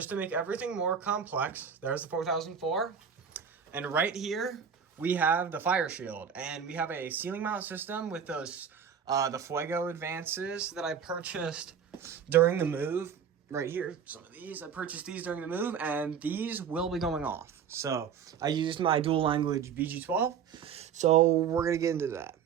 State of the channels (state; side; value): quieter; left; 7.4 dB